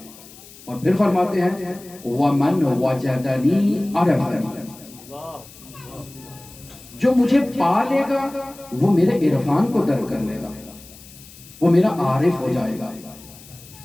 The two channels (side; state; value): left; noise; hiss, 20 dB below the sound